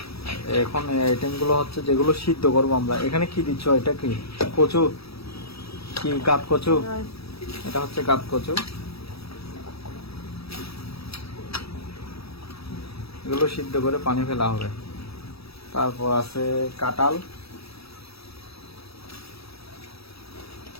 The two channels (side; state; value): right; late; 0.77 ms